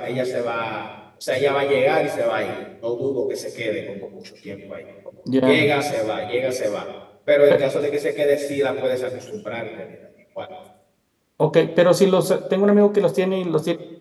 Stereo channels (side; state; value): both; identical; correlation 1.00